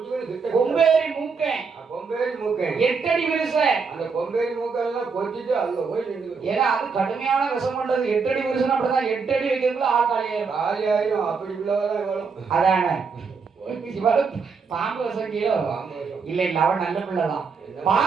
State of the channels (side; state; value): left; quieter; 5.2 dB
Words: கொம்பேரி மூக்கன். கொம்பேரி மூக்கன் 8 அடி விரிசன். அந்த கொம்பேரி மூக்கெல்லாம் கொத்திட்டு அங்க போய் நின்று. ஏன்னா அது கடுமையான விஷம் பண்றது. 8 அடி விரிசன் அப்படிதான் 8 அடி வைக்கிறதுல ஆள் காலியாயிரும். அப்படி உள்ளவதான் இவ்வளவு. அதானே பாம்பு விஷம் கீழோ இல்ல இல்ல அவன் நல்ல பிள்ளைதான்.